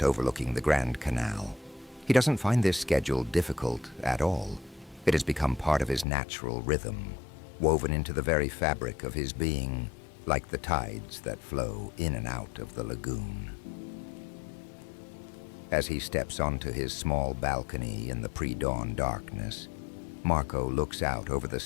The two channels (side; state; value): right; drops out; at 6.1 s